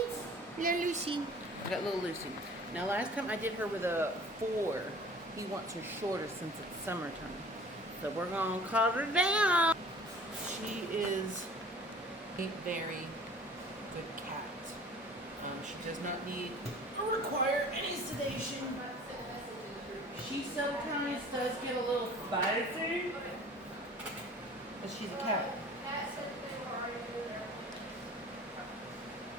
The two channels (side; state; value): both; normal; correlation 0.46